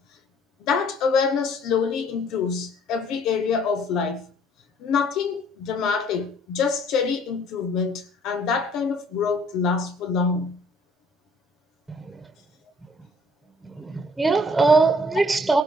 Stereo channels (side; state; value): both; normal; correlation 0.59